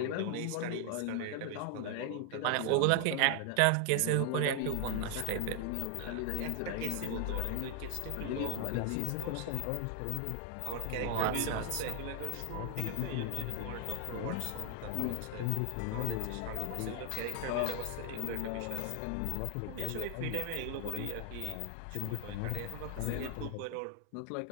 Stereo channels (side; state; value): both; different; correlation 0.00